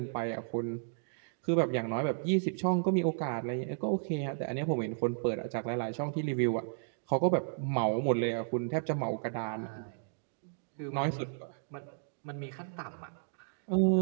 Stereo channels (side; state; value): left; silent; digital silence